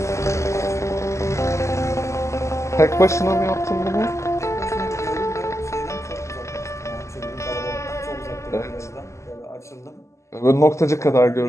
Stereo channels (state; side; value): late; right; 0.14 ms